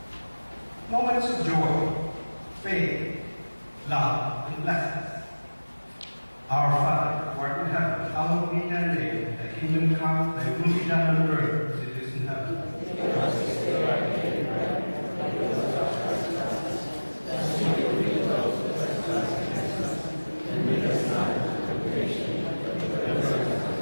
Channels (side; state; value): both; inverted; correlation -1.00